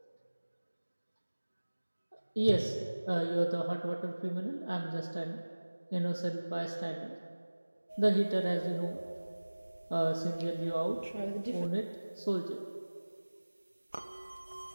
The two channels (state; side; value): inverted; both; correlation -1.00